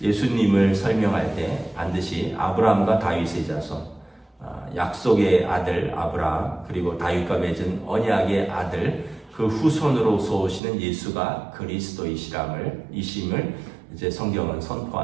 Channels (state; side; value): drops out; left; at 10.6 s